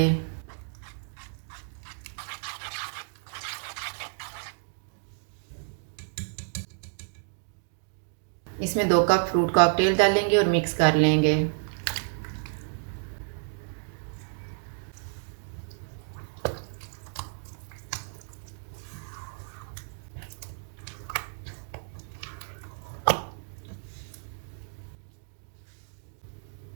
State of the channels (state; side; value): silent; left; digital silence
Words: इसमें 2 कप फ्रूट कॉकटेल डालेंगे और मिक्स कर लेंगे।